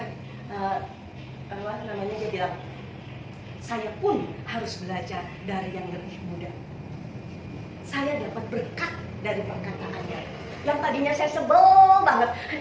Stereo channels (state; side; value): identical; both; correlation 1.00